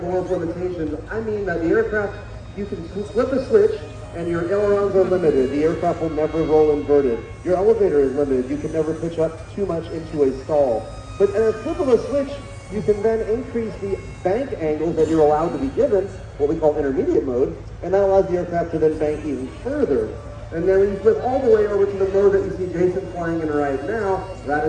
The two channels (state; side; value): identical; both; correlation 1.00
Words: limitations, I mean that the aircraft, you can flip a switch, and your ailerons are limited. The aircraft will never roll inverted. Your elevator is limited. You can never pitch up too much into a stall. But at a flip of a switch, you can then increase the bank angles that you're allowed to be given, what we call intermediate mode, and that allows the aircraft to then bank even further. And then when you flip all the way over to the mode that you see Jason flying in right now, that